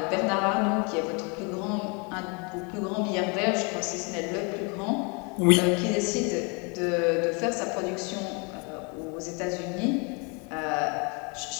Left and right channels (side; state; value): right; quieter; 32.6 dB